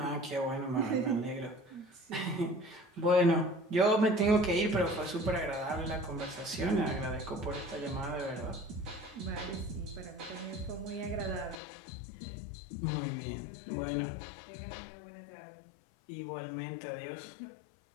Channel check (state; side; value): drops out; right; at 11.6 s